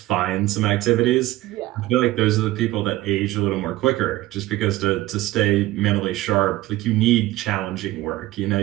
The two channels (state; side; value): quieter; left; 16.9 dB